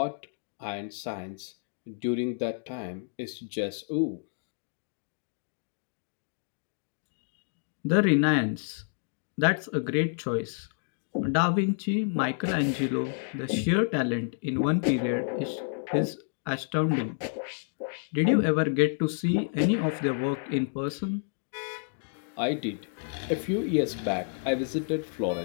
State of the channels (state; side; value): silent; right; digital silence